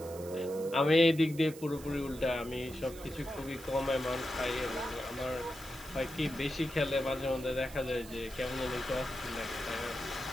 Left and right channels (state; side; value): noise; right; hiss, 17 dB below the sound